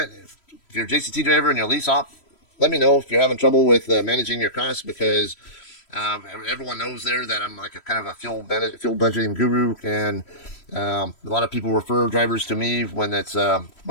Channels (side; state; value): right; late; 3.1 ms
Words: if you're a JCT driver and you're a lease op, let me know if you're having trouble with managing your costs, because everyone knows there that I'm like a kind of a fuel budgeting guru, and a lot of people refer drivers to me when